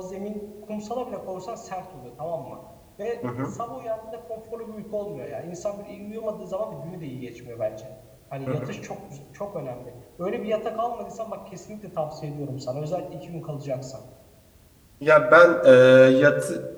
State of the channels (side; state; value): both; identical; correlation 1.00